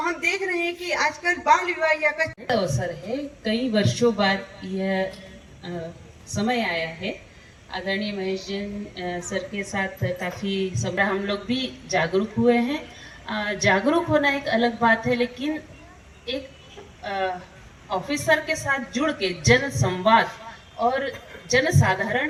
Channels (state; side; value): identical; both; correlation 1.00